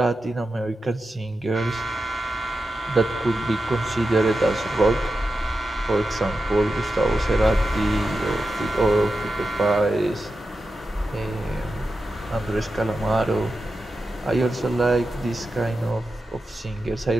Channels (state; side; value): normal; both; correlation 0.90